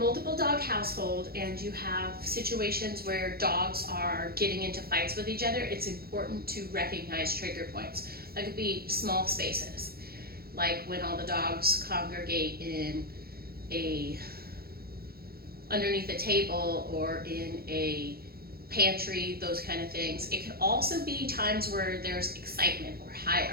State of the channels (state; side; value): late; left; 0.44 ms